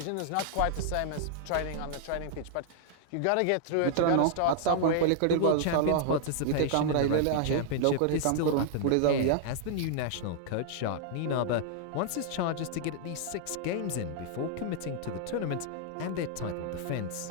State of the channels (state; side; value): different; both; correlation 0.00